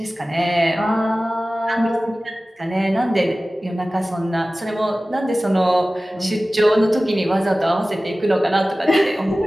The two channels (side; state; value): both; normal; correlation 0.97